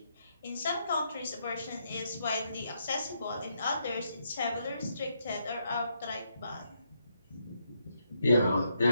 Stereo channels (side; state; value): both; inverted; correlation -0.78